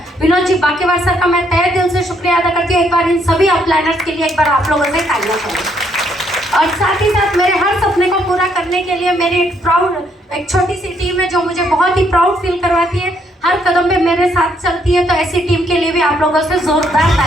विनोद जी बाकेवार सर का मैं तहे दिल से शुक्रिया अदा करती हूँ। एक बार इन सभी अपलाइनर्स के लिए एक बार आप लोगों से तालियां करें। और साथ ही साथ मेरे हर सपने को पूरा करने के लिए मेरी एक छोटी सी टीम है जो मुझे बहुत ही प्राउड फील करवाती है, हर कदम पे मेरे साथ चलती है। तो ऐसी टीम के लिए भी आप लोगों से जोरदार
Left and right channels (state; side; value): normal; both; correlation 0.71